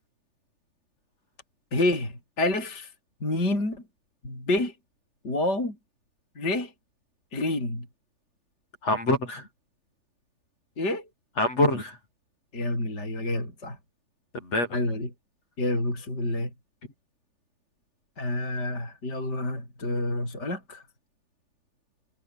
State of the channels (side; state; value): right; late; 3.4 ms